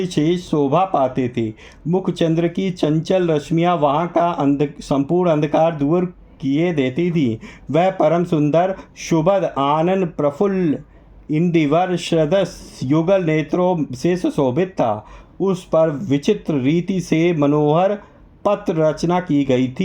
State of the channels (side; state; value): both; identical; correlation 1.00